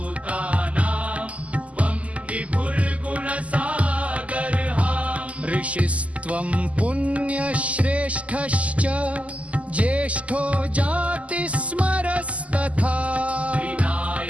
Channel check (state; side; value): late; left; 0.067 ms